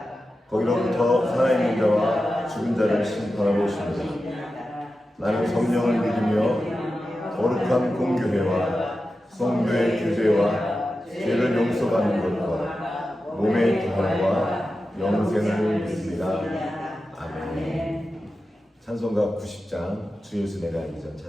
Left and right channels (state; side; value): normal; both; correlation 0.92